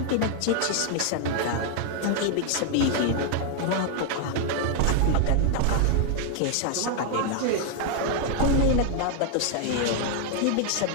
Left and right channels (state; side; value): different; both; correlation 0.00